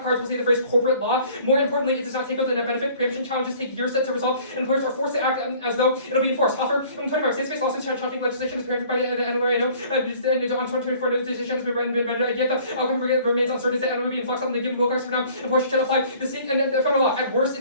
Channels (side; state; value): both; inverted; correlation -0.53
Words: cards will say the phrase corporate law. More importantly, it does not take out the net benefit. Preemption challenges take years to resolve, and employers are forced to act as though it'll be enforced. Hoffer, 25 states-based lawsuits challenging legislation is preempted by the Emory. I know. On 2024, no decision has been rendered. Yet the outcome remains uncertain. That will be in flux on the given Wilcox for now. Enforcement should apply the state and the federal law. At worst,